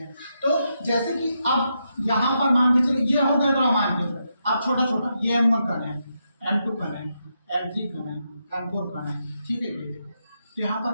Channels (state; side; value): inverted; both; correlation -0.83